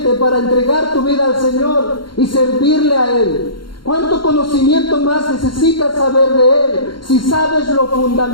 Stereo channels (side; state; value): right; late; 0.72 ms